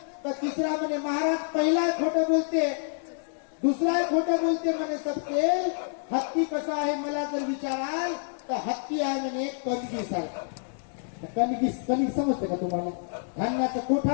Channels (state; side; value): silent; right; digital silence